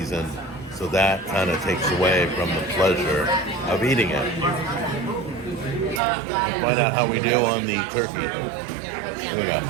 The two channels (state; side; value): drops out; left; at 6.0 s